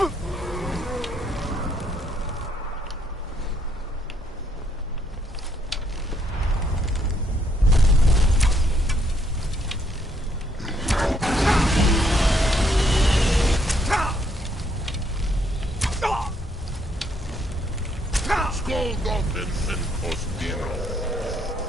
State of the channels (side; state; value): both; normal; correlation 0.71